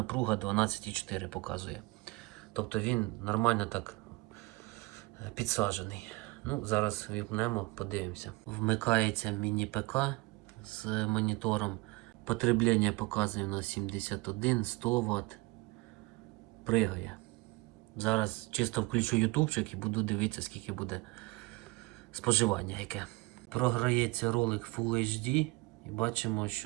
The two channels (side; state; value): left; quieter; 23.7 dB